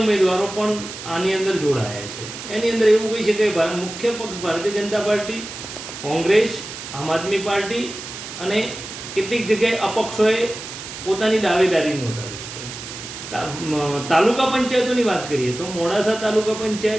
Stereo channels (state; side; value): noise; right; hiss, 10 dB below the sound